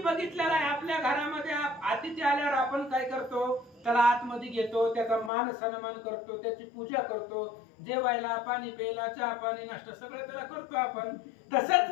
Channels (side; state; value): right; drops out; at 5.3 s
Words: आहे आपल्या घरामध्ये अतिथी आल्यावर आपण काय करतो, त्याला आतमध्ये घेतो, त्याचा मान सन्मान करतो, त्याची पूजा करतो, जेवायला पाणी प्यायला चहा पाणी नाश्ता सगळं त्याला करतो आपण. तसंच